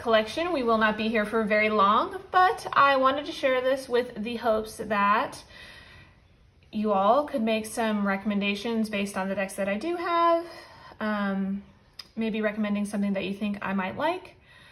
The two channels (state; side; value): identical; both; correlation 1.00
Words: We will not be here for very long, but I wanted to share this with the hopes that you all could make some recommendations based on the decks that I do have. Maybe recommending something that you think I might like.